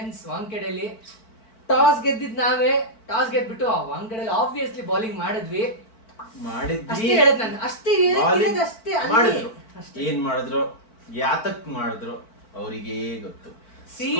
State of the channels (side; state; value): right; late; 4.5 ms